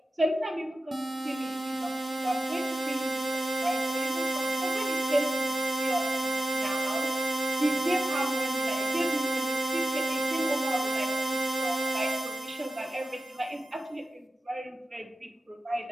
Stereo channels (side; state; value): both; normal; correlation 0.93